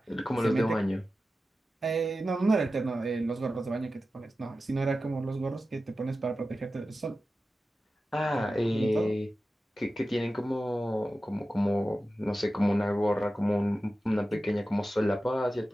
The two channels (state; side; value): normal; both; correlation 0.93